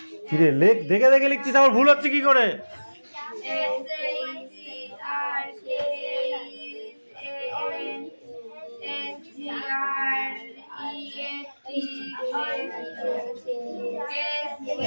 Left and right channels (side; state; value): both; inverted; correlation -1.00